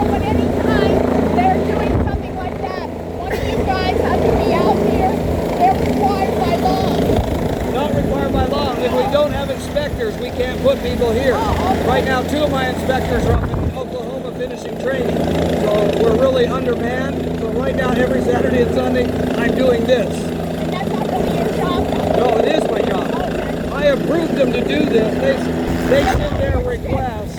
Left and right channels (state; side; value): identical; both; correlation 1.00